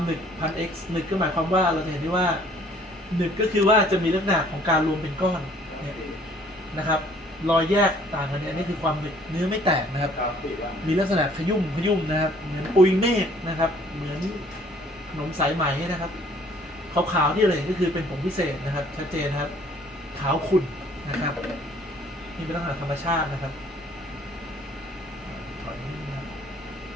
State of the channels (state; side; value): normal; both; correlation 0.58